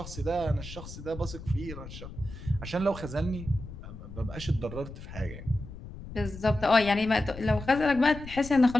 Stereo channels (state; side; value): noise; left; rumble, 13 dB below the sound